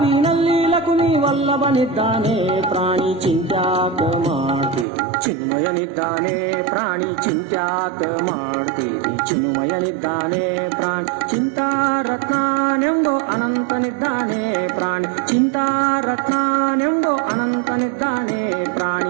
ಲಕುಮಿ ವಲ್ಲಭನಿದ್ದಾನೆ ಪ್ರಾಣಿ ಚಿಂತ್ಯಾಕ ಮಾಡ್ತಿ ಚಿನ್ಮಯನಿದ್ದಾನೆ ಪ್ರಾಣಿ ಚಿಂತ್ಯಾಕ ಮಾಡ್ತೀವಿ ಚಿನ್ಮಯನಿದ್ದಾನೆ ಪ್ರಾಣಿ ಚಿಂತಾರತ್ನಾನೆಂಬೋ ಅನಂತನಿದ್ದಾನೆ ಪ್ರಾಣಿ ಚಿಂತಾರತ್ನಾನೆಂಬೋ ಅನಂತನಿದ್ದಾನೆ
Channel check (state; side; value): drops out; left; at 4.9 s